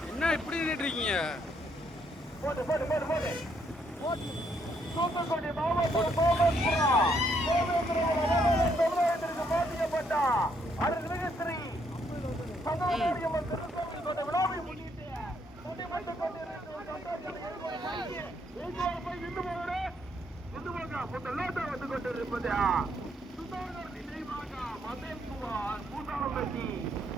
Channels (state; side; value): normal; both; correlation 0.72